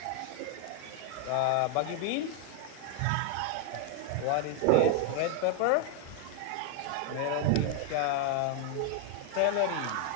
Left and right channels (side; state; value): both; different; correlation 0.00